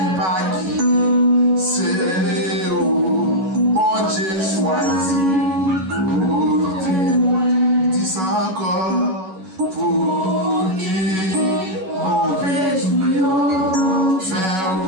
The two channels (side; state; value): left; late; 11 ms